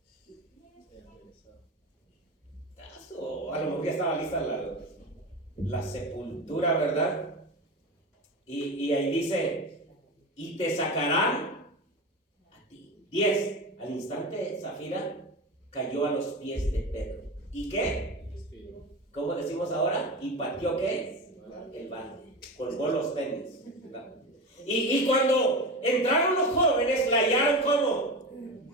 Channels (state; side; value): normal; both; correlation 0.25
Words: O a lo mejor ya estaba lista la sepultura, ¿verdad? Y ahí dice, y te sacarán 10. Al instante Zafira cayó a los pies de Pedro. ¿Y qué? ¿Cómo decimos ahora? ¿Y pateó qué? El balde. Colgó los tenis. Y cuando entraron los jóvenes, la hallaron como